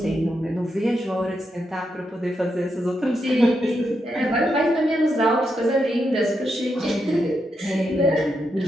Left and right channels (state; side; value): normal; both; correlation 0.83